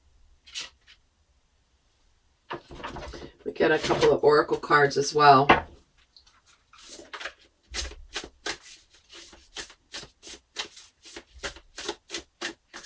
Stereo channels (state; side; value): identical; both; correlation 1.00